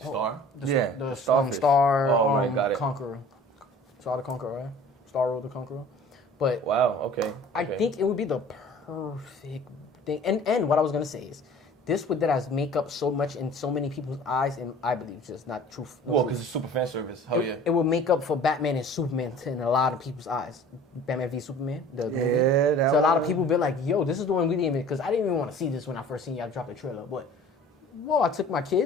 Star? the Starfish. Star right, got it. Conqueror. Star the Conqueror, right? Star Road the Conqueror. But Wow, okay. I think it would be the perfect thing. And what I was gonna say is, this would that make up so much in so many people's eyes, and I believe just not truth. No Well, truth. because it's super fan service. Hell yeah. It would make up for Batman and Superman in a lot of people's eyes. Batman v Superman, the movie. that So a lot of one. people be like, yo, this is the one we didn't even, because I didn't even want to see this when I first seen y'all drop the trailer. But, whoa, I took my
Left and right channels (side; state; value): both; normal; correlation 0.47